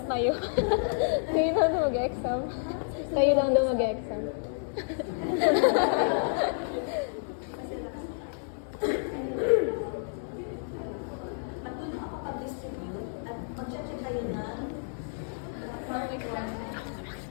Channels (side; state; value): right; silent; digital silence